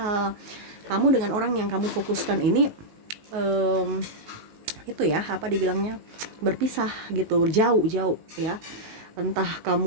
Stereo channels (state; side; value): late; left; 19 ms